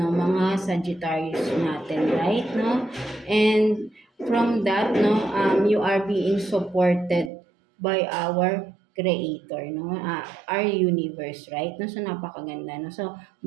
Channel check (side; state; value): left; drops out; at 7.3 s